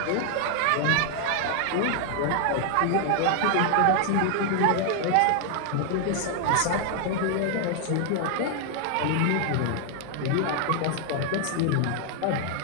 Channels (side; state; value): both; different; correlation 0.00